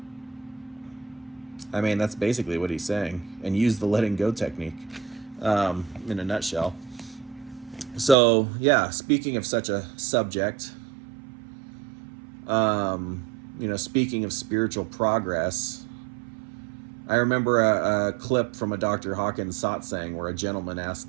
That's basically what he's saying, and use the letting go technique, in a nutshell. So, yeah, speaking of such a subject, speaking of spiritual progress, I remember a clip from a Dr. Hawkins satsang where a gentleman asked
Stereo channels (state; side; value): drops out; left; at 8.2 s